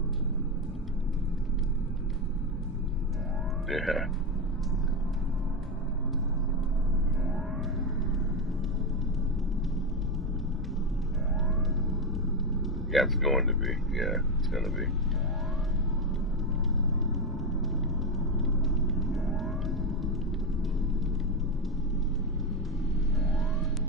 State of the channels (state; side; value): normal; both; correlation 0.12